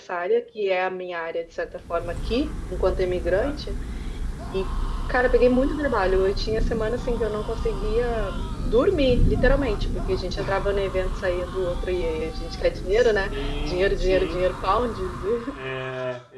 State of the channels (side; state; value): both; identical; correlation 1.00